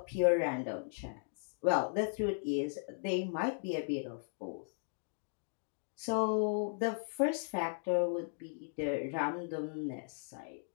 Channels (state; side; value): silent; right; digital silence